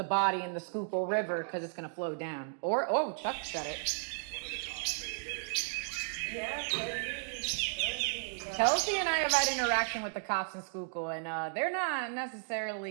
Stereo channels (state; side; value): silent; left; digital silence